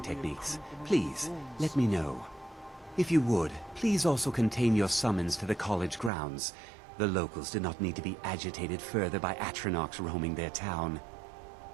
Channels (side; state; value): left; drops out; at 6.1 s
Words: please let me know. If you would, please also contain your summons to the college grounds. The locals do not need to be agitated further by Atronachs roaming their town.